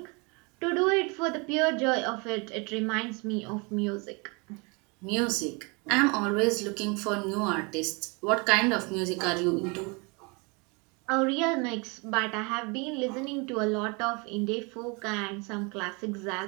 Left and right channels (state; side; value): quieter; left; 30.1 dB